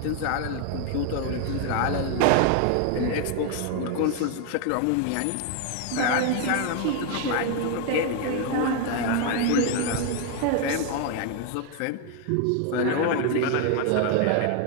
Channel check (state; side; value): different; both; correlation 0.01